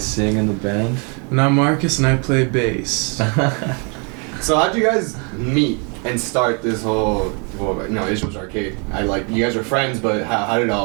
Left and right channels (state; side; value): quieter; left; 35.6 dB